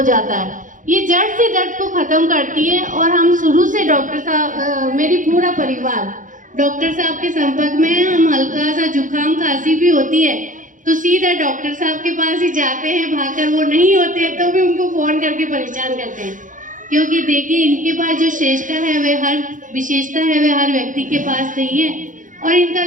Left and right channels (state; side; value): late; left; 0.38 ms